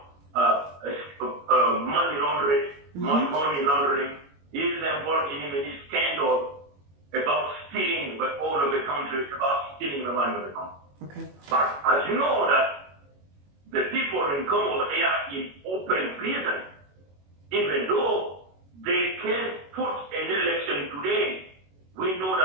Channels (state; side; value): late; left; 21 ms